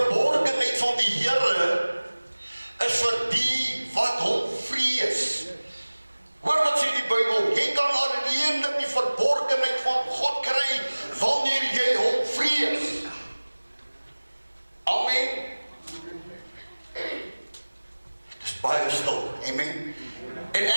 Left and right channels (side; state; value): both; inverted; correlation -1.00